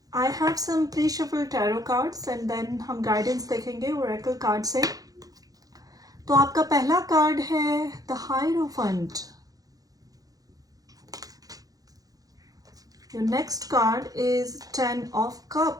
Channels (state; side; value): late; left; 0.18 ms